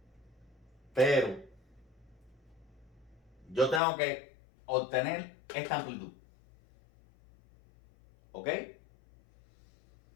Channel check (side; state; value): right; drops out; at 3.8 s